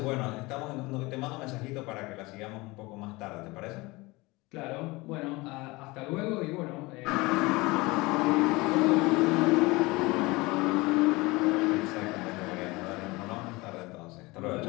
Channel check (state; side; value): quieter; right; 22.9 dB